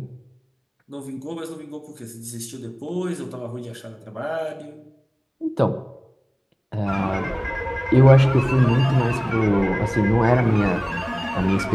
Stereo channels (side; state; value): both; identical; correlation 1.00